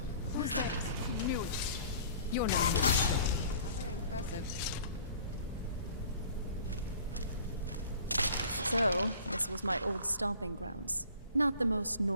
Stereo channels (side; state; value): both; inverted; correlation -0.49